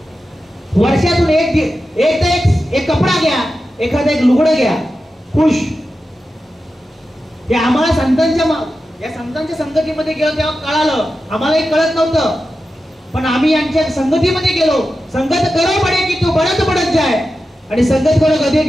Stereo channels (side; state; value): both; normal; correlation 0.91